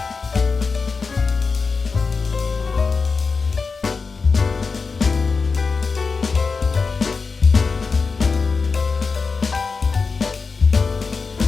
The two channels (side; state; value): right; quieter; 4.7 dB